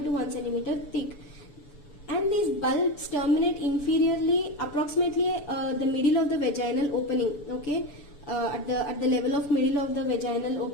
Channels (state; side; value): late; right; 6.9 ms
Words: to 1 centimeter thick. And these bulbs terminate inferiorly, approximately the middle of the vaginal opening. Okay, at the level of middle of the vaginal